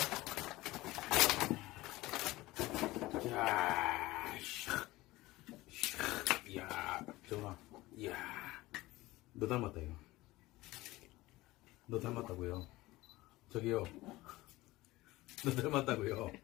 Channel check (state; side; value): quieter; right; 19.0 dB